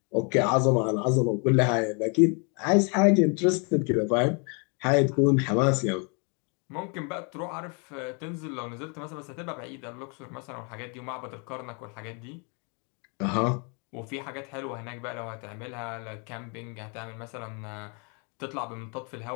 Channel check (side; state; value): right; quieter; 35.7 dB